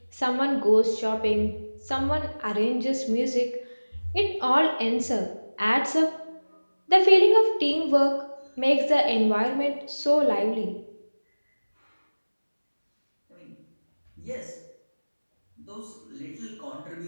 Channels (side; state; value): both; inverted; correlation -1.00